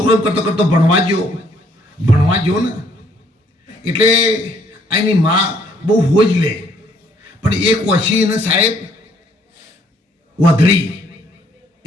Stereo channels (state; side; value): normal; both; correlation 0.65